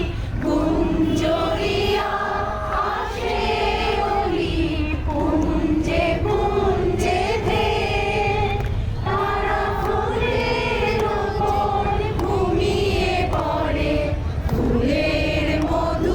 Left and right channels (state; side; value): identical; both; correlation 1.00